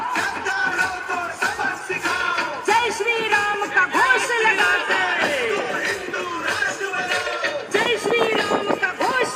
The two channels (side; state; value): both; identical; correlation 1.00